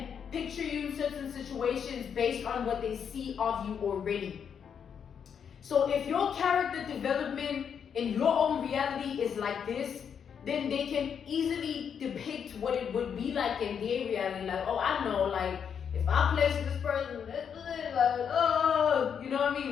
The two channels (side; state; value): right; quieter; 7.5 dB